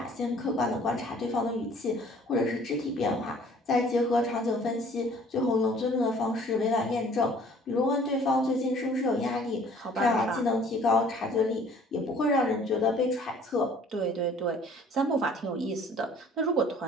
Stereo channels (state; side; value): normal; both; correlation 0.54